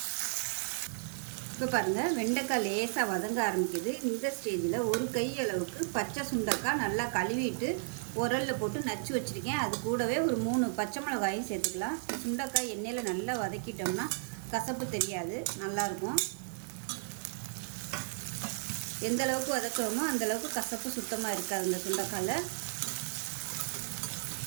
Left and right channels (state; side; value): silent; left; 55 dB below the other